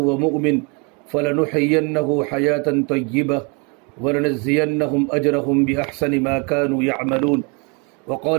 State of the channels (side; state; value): left; quieter; 32.6 dB